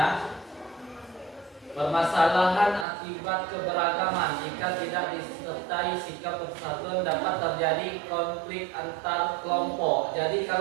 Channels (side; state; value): left; drops out; at 2.9 s